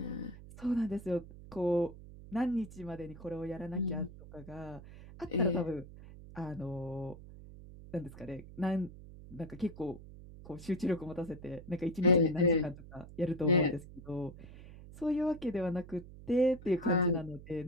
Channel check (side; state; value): right; noise; hum, 16 dB below the sound